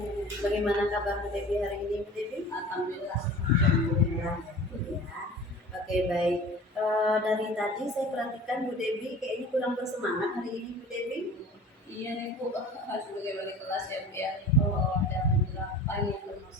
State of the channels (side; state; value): both; normal; correlation 0.41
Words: Bagaimana kabar Bu Devi hari ini Bu Devi? Alhamdulillah. Alhamdulillah. Ya. Oke, baik. Dari tadi saya perhatikan Bu Devi kayaknya kurang bersemangat hari ini Bu Devi. Iya nih Bu, sebagai wali kelas ya Bu ya, ada beberapa nih